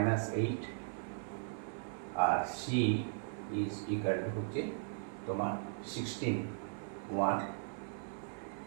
আর c ইজ ইকুয়াল টু হচ্ছে তোমার 16, 1,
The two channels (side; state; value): left; silent; 53 dB below the other